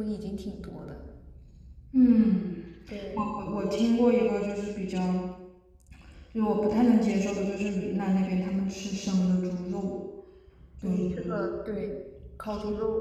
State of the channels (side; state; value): both; identical; correlation 1.00